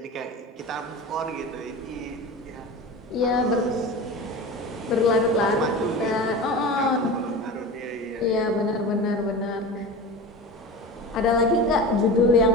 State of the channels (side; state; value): both; normal; correlation 0.30